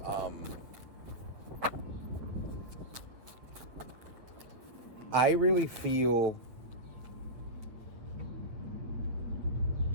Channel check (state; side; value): late; left; 8.9 ms